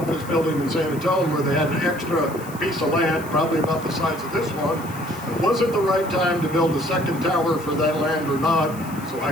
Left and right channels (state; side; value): noise; left; hiss, 19 dB below the sound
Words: building in San Antonio where they had an extra piece of land, probably about the size of this one. Was it the right time to build a second tower for that land or not? So